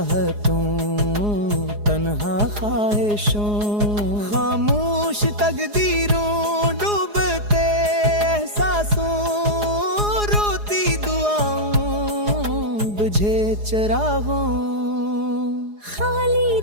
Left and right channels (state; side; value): late; left; 4.8 ms